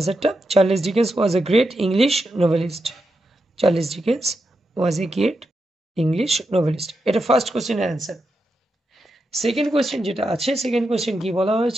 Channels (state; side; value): normal; both; correlation 0.86